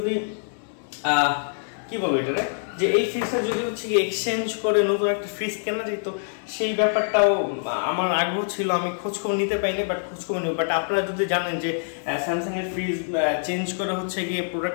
কি বলবো এটা যে এই ফ্রিজটা যদি হচ্ছে কি এক্সচেঞ্জ করে নতুন একটা ফ্রিজ কেনা যেত, সেই ব্যাপারটাও আমার আগ্রহ ছিল। আমি খোঁজখবর নিতে পাইনি, বাট খোঁজখবর নিব। বাট আপনারা যদি জানেন যে স্যামসাং এর ফ্রিজ চেঞ্জ করে হচ্ছে গিয়ে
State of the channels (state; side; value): silent; right; 62 dB below the other